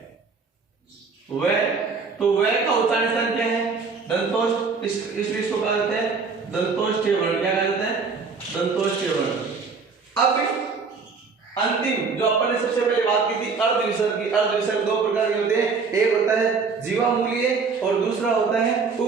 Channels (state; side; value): quieter; left; 4.9 dB